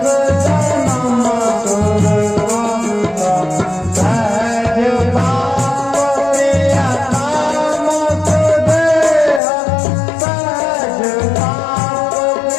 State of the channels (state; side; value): drops out; right; at 9.4 s